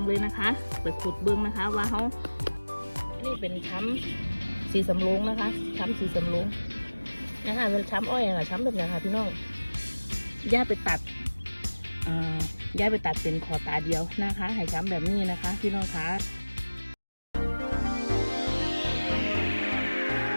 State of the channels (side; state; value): both; inverted; correlation -1.00